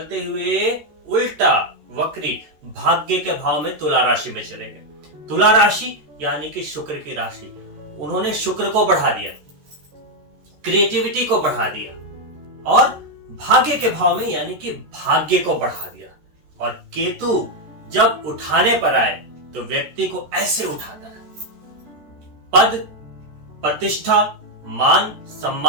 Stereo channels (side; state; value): left; late; 14 ms